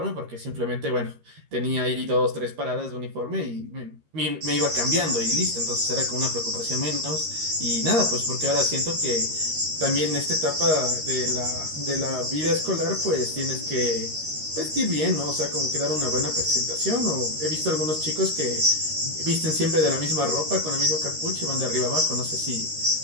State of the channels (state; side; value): late; left; 13 ms